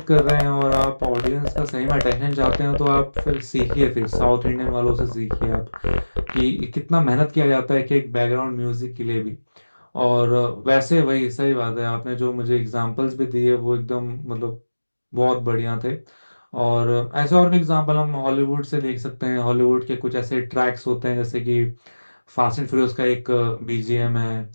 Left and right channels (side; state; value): both; inverted; correlation -1.00